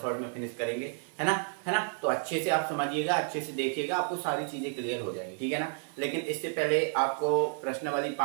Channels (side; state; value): left; silent; 57 dB below the other